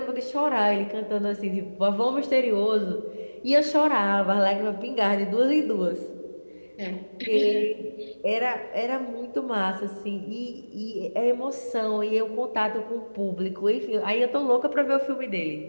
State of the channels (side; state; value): both; inverted; correlation -1.00